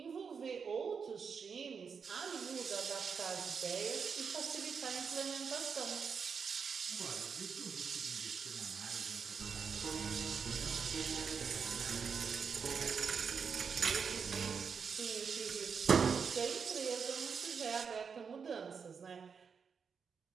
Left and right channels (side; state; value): left; quieter; 6.1 dB